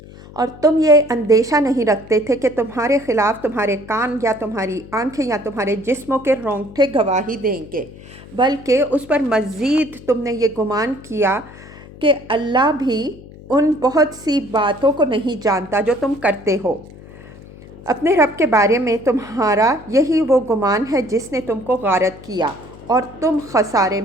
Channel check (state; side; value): noise; left; hum, 18 dB below the sound